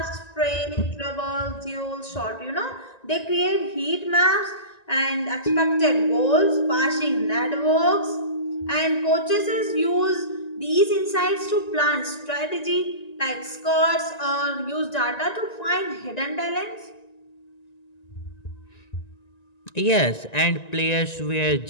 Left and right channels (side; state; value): right; late; 1.9 ms